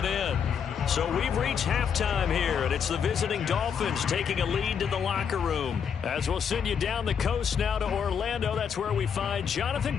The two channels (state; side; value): quieter; right; 7.3 dB